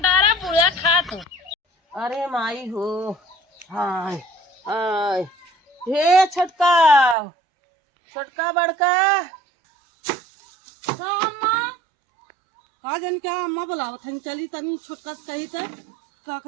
डारा बुढ़ा खा तू। अरे माई हो, हाय हाय, हे छोटका छोटका बड़का तो अम्मा का जन क्या अम्मा बुलावत हन, चली तनी छोटका से कही त का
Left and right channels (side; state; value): left; drops out; at 7.2 s